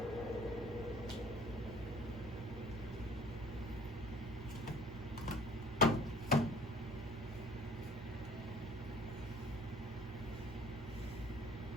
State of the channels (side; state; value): both; normal; correlation 0.53